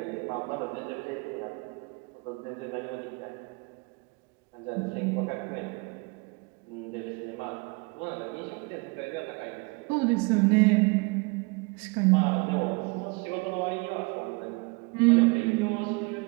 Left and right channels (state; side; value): quieter; left; 29.4 dB